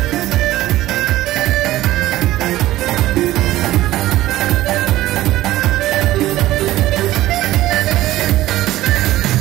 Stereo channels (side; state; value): left; quieter; 15.6 dB